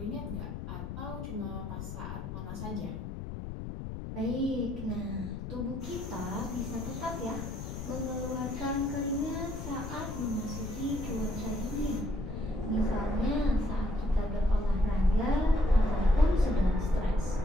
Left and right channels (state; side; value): noise; left; rumble, 7 dB below the sound